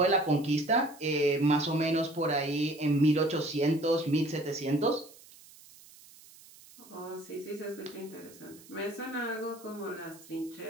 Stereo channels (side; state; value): right; noise; hiss, 22 dB below the sound